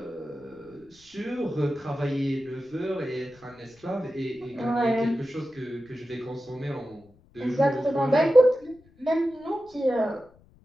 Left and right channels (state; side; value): noise; left; rumble, 28 dB below the sound